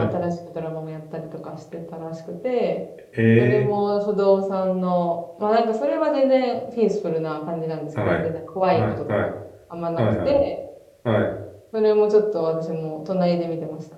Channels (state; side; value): identical; both; correlation 1.00